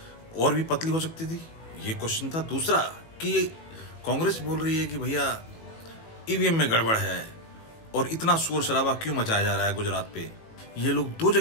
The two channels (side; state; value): right; late; 18 ms